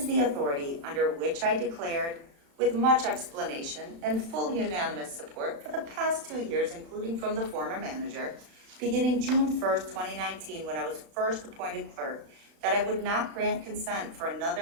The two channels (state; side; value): late; left; 35 ms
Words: the authority under which I declared, with much explanation and full unanimous support for the past 2 years, including from the former manager, beginning June 1st, 2019, when I was first appointed clerk, that I would not grant consent for